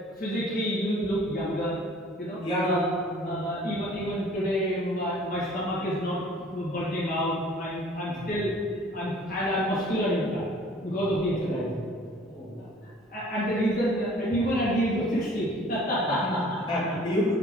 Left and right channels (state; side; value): normal; both; correlation 0.52